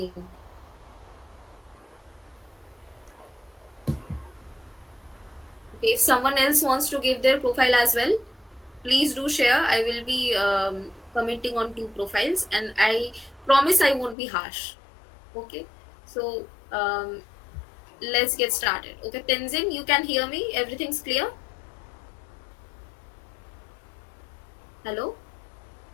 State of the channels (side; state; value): right; drops out; at 14.2 s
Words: Okay, if someone else wants to give their profile as well, please do share. I will be commenting on two profiles, and I promise I won't be harsh. Okay, so let's get started. Okay, Tenzin, you can hear me? Everything's clear? Hello?